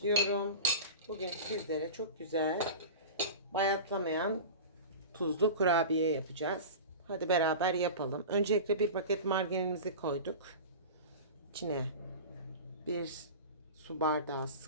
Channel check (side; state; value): both; inverted; correlation -0.31